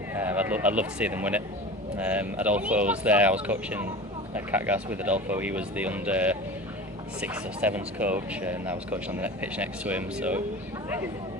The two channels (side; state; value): both; normal; correlation 0.34